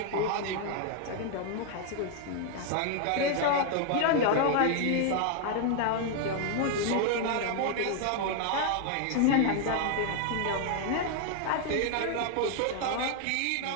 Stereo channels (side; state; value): both; different; correlation 0.00